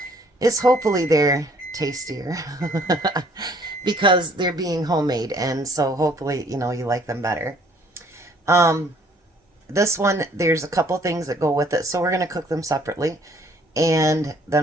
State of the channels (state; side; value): normal; both; correlation 0.60